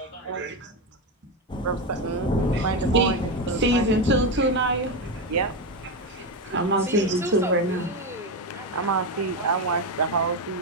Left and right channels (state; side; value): normal; both; correlation 0.12